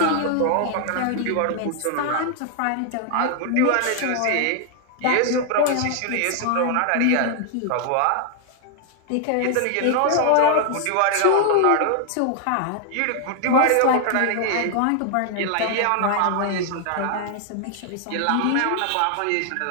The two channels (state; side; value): different; both; correlation 0.00